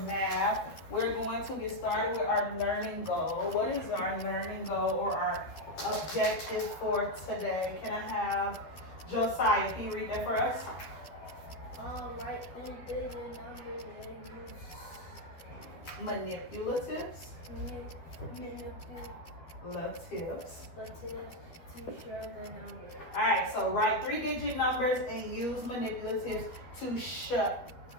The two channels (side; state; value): right; late; 12 ms